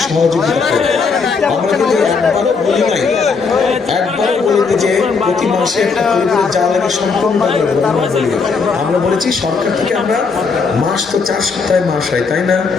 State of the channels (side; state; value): right; quieter; 4.9 dB